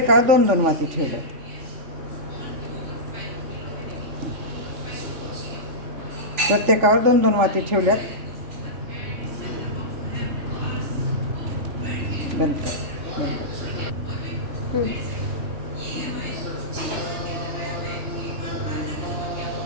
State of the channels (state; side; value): late; left; 3.5 ms